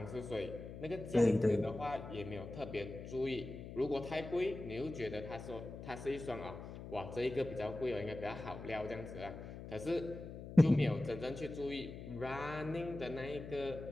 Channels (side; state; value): left; noise; hum, 10 dB below the sound